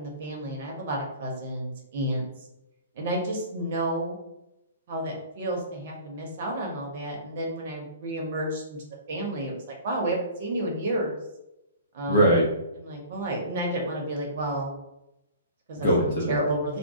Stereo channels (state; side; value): inverted; both; correlation -0.43